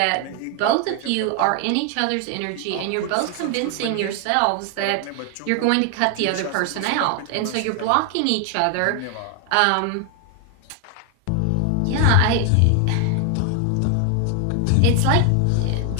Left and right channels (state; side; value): different; both; correlation 0.00